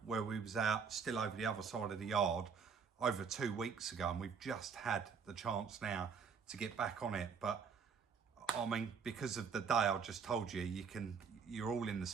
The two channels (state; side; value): quieter; left; 6.1 dB